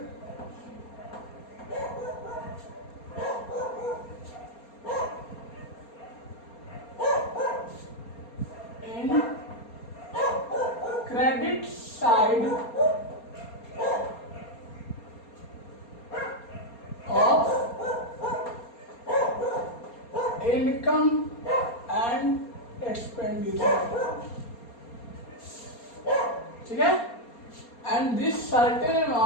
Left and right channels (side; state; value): right; late; 4.3 ms